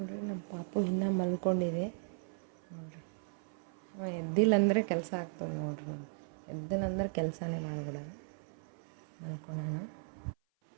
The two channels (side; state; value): left; silent; 53 dB below the other